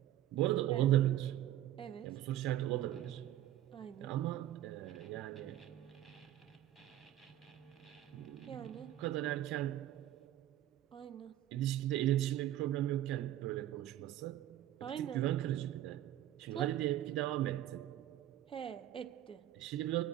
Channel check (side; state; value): left; quieter; 12.9 dB